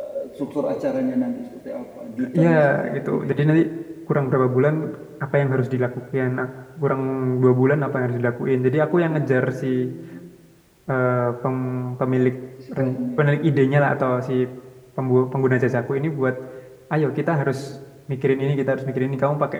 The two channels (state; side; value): identical; both; correlation 1.00